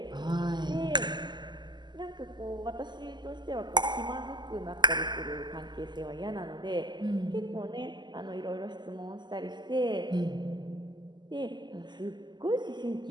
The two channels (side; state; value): left; late; 0.21 ms